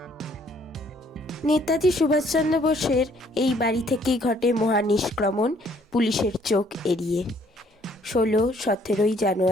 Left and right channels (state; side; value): normal; both; correlation 0.63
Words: নেতাজি সুভাষচন্দ্র বোসের এই বাড়ি থেকেই ঘটে মহানিষ্ক্রমণ পুলিশের চোখ এড়িয়ে 16-17